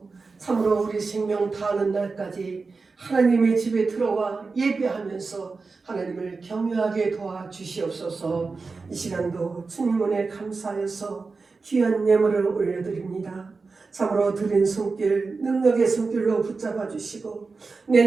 참으로 우리 생명 다하는 날까지 하나님의 집에 들어와 예배하면서 하나님을 경외하게 도와주시옵소서. 이 시간도 주님 은혜 감사해서 귀한 예물을 올려드립니다. 참으로 드린 손길, 능력의 손길로 붙잡아 주시고,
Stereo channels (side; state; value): left; quieter; 4.3 dB